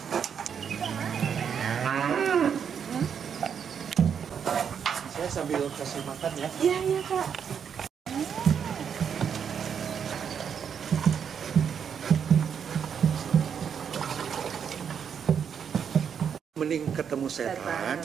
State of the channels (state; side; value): quieter; left; 7.5 dB